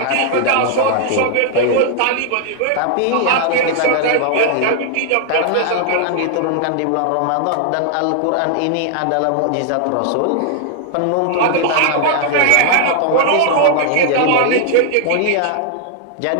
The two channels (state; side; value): different; both; correlation 0.00